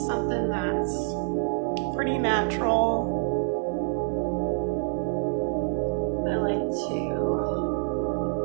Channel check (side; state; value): left; silent; 60 dB below the other